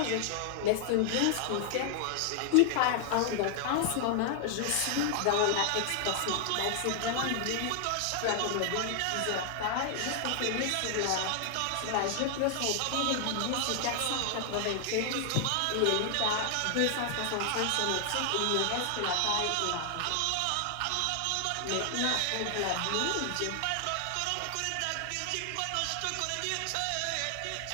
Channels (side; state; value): both; different; correlation 0.00